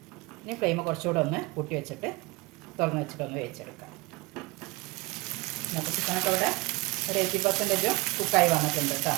ഇനി ഫ്ലെയിം കുറച്ചുകൂടെ ഒന്ന് കൂട്ടി വെച്ചിട്ട് തുറന്ന് വെച്ചിട്ടൊന്ന് വേവിച്ചെടുക്കാം. അപ്പോൾ ചിക്കനൊക്കെ ഇവിടെ ഒരു 80% കുക്കായി വന്നിട്ടുണ്ട് കേട്ടോ.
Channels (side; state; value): left; quieter; 24.1 dB